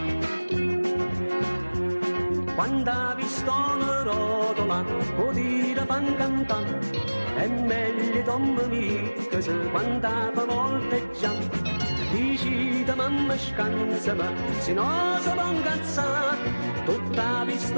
Quando ha visto una rotola, può dire fan cantare, è meglio Tom mica se quando fa volteggiare. Dici da mamma scansa, ma se no si va incazzare, tutta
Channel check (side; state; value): both; inverted; correlation -1.00